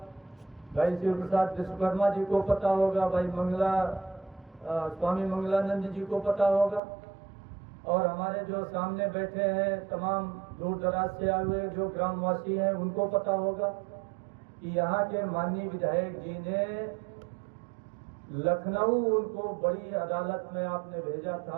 भाई शिव प्रसाद विश्वकर्मा जी को पता होगा, भाई स्वामी मंगलानंद जी को पता होगा, और हमारे जो सामने बैठे हैं तमाम दूर दराज से आए हुए जो ग्रामवासी हैं उनको पता होगा कि यहाँ के माननीय विधायक जी ने लखनऊ, उनको बड़ी अदालत में आपने भेजा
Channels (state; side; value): drops out; left; at 6.8 s